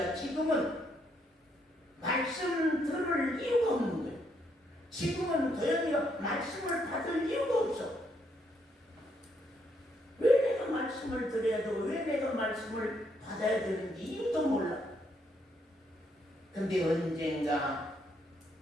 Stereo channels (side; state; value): both; normal; correlation 0.74